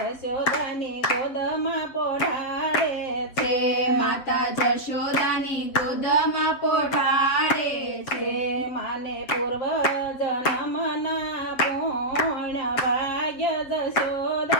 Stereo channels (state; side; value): late; right; 7.7 ms